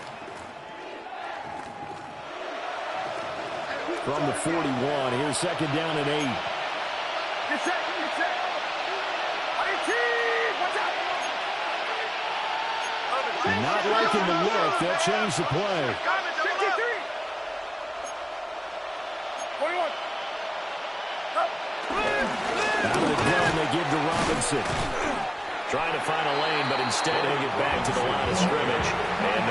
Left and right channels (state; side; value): identical; both; correlation 1.00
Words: From the 41, here's second down and 8. Get set, get set. 18, watch out. Not liking the look. They'll change the play. 53. 21. Out of the gun, they give to Robinson. Trying to find a lane, but instead he'll get back to the line of scrimmage. And